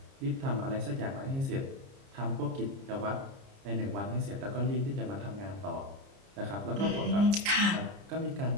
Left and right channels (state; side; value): late; left; 30 ms